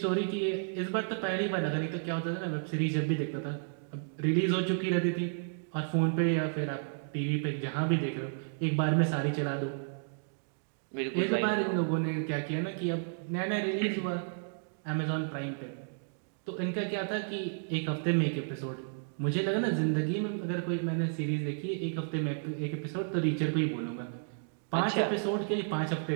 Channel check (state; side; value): silent; left; digital silence